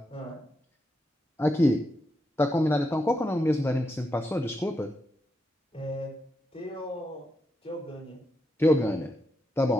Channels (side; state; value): both; normal; correlation 0.84